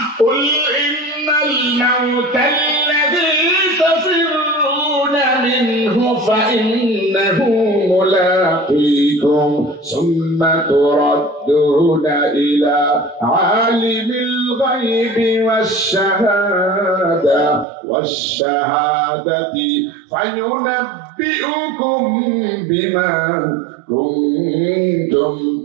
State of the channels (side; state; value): left; drops out; at 17.7 s